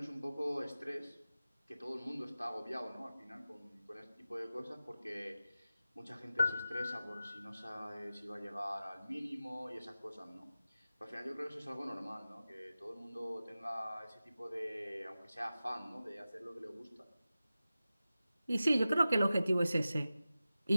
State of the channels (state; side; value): inverted; both; correlation -0.95